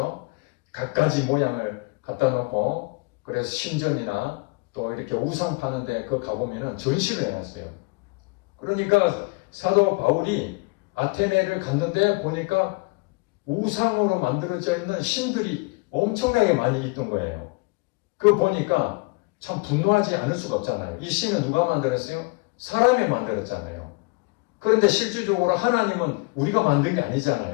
갖가지 모양을 갖다 놓고, 그래서 신전이나 또 이렇게 우상 파는데 그 가보면은 전시를 해놨어요. 그러니까 사도 바울이 아테네를 갔는데 보니까 우상으로 만들어져 있는 신들이 엄청나게 많이 있던 거예요. 그거 보니까 참 분노하지 않을 수가 없잖아요. 이 신은 누가 만들었어요? 사람이 만들었잖아요. 그런데 실질적으로 하나님은 우리가 만든 게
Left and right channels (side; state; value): right; quieter; 27.9 dB